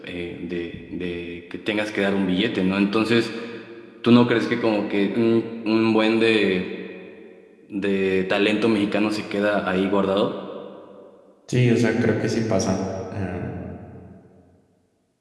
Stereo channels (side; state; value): both; identical; correlation 1.00